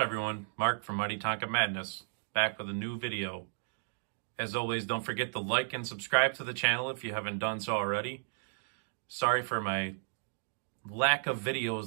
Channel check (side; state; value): left; silent; digital silence